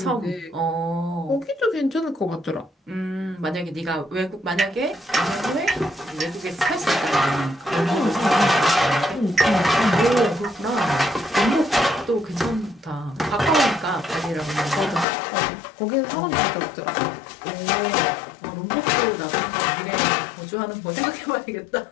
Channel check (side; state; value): right; drops out; at 15.1 s